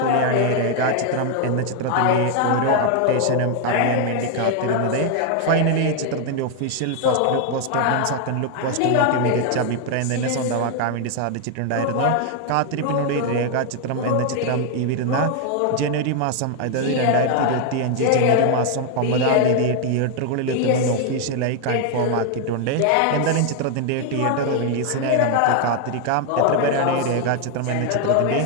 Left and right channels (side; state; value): both; different; correlation 0.00